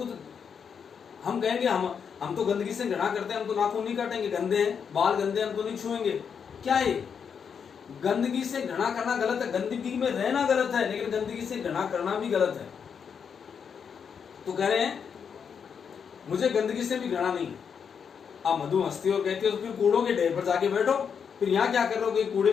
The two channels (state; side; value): quieter; right; 6.9 dB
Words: हम कहेंगे हम तो गंदगी से घृणा करते हैं, हम तो नाखून नहीं काटेंगे, गंदे हैं, बाल गंदे, हम तो नहीं छुएंगे। क्या है? गंदगी से घृणा करना गलत है, गंदगी में रहना गलत है, लेकिन गंदगी से घृणा करना भी गलत है। तो कह रहे हैं मुझे गंदगी से भी घृणा नहीं। अब मधु हंसती और कहती है तो फिर कूड़ों के ढेर पर जाके बैठो, फिर यहाँ क्या कर रहे हो, कूड़े